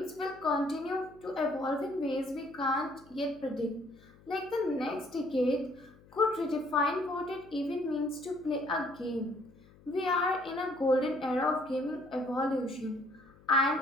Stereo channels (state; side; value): noise; left; hum, 25 dB below the sound